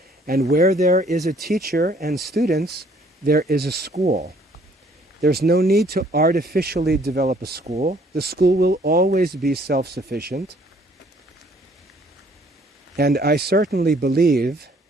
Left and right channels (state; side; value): normal; both; correlation 0.61